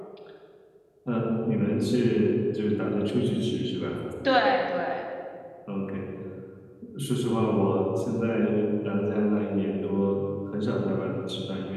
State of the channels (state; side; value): identical; both; correlation 1.00